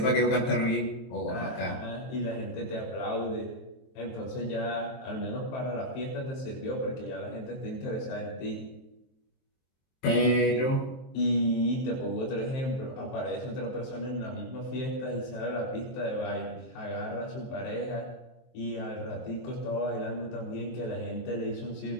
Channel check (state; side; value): late; right; 23 ms